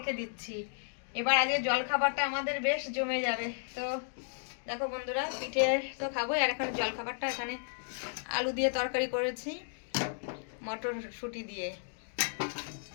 দিচ্ছি। এবার আজকে জলখাবারটা আমাদের বেশ জমে যাবে। তো দেখো বন্ধুরা, পিঠে তো খাবোই, আর এখন জলখাবারটা এখানে আলু দিয়ে তরকারি করেছি মটরশুঁটি দিয়ে।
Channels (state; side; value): silent; right; digital silence